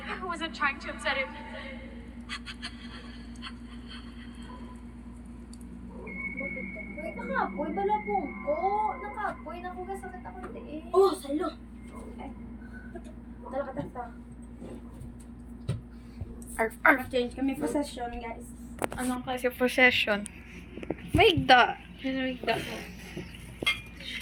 I wasn't trying to upset him. Uy, nakapoy. Balabong ko. Nakapoy. Nakugasakit ako tiin. Oh, salo! Dala ka tasta. Arf, arf. Change kami possession, guys. Anong kasi possession? Maigda. Maigda.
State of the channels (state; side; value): identical; both; correlation 1.00